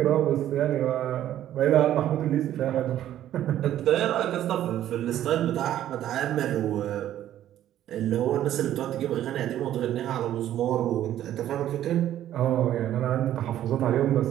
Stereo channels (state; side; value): quieter; left; 12.0 dB